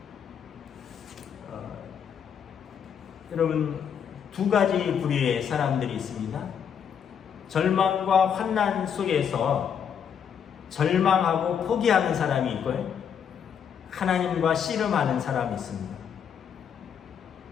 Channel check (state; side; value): quieter; right; 7.8 dB